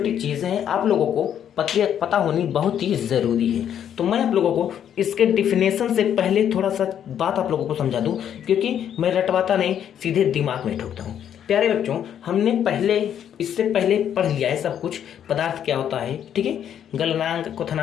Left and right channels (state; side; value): quieter; right; 9.5 dB